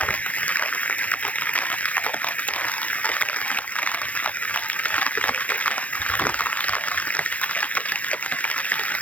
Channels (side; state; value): right; late; 0.068 ms